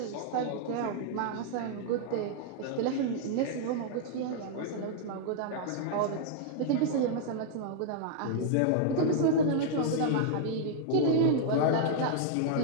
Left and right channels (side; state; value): both; different; correlation -0.01